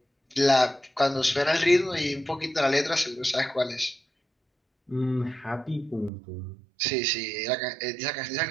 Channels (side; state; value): left; drops out; at 6.1 s